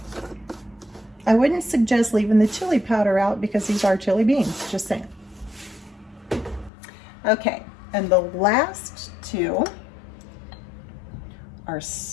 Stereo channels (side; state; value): right; drops out; at 6.7 s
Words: I wouldn't suggest leaving the chili powder out because these are chili beans, just saying. Okay, and the last two are